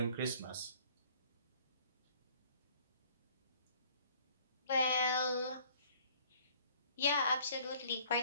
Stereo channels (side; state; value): both; inverted; correlation -0.56